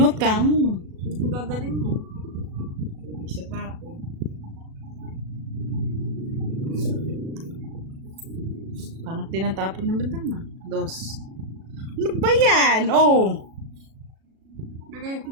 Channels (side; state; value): left; late; 37 ms